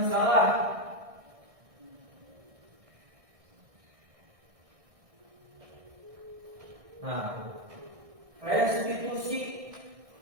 salah. Nah, restitusi,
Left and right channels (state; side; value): late; left; 1.6 ms